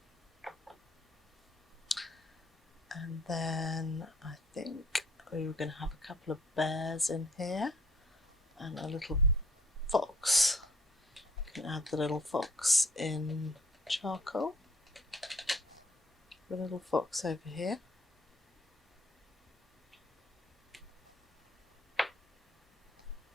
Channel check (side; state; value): both; normal; correlation 0.58